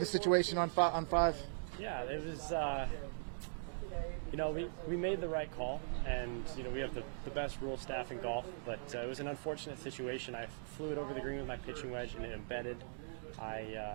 situation on 5. Yeah, it was. We made the right call, and we have the best rule staff in golf, but it was an unfortunate situation. I flew it over the green with my pitching wedge, and it embedded.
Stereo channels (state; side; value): silent; left; digital silence